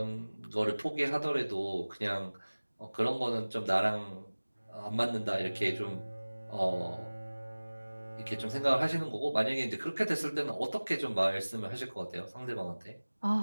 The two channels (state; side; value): inverted; both; correlation -1.00